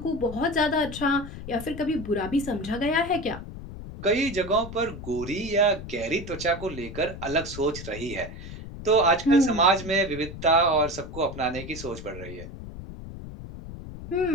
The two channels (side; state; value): left; noise; rumble, 11 dB below the sound